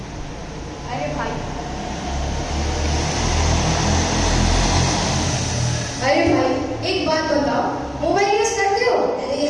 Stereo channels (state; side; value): identical; both; correlation 1.00